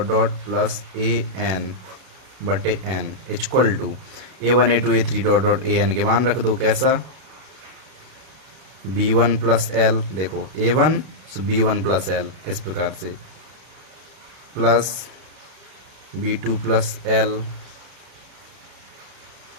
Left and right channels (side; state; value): left; late; 32 ms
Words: dot plus a N बटे N equal to a1 a2 a3 dot dot a n के मान रख दो, कैसा, b1 प्लस एल, देखो a1 b1 प्लस एल, इस प्रकार से, plus b2 plus L